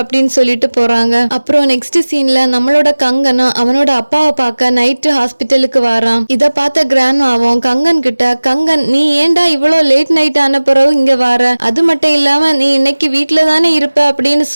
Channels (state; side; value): inverted; both; correlation -1.00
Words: சொல்லிட்டு போறாங்க. அப்புறம் நெக்ஸ்ட் சீன்ல நம்மளோட கங்கனும் அவனோட அப்பாவை பார்க்க நைட்டு ஹாஸ்பிட்டலுக்கு வரான். இத பார்த்த கிராண்ட்மாவும் கங்கன் கிட்ட, கங்கன் நீ ஏன்டா இவ்வளவு லேட் நைட் ஆன பிறகு இங்க வர, அது மட்டும் இல்லாம நீ இன்னைக்கு வீட்டுல தானே இருப்ப அப்படின்னு